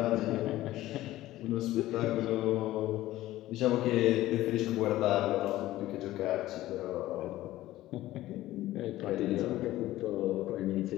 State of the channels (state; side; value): quieter; right; 15.6 dB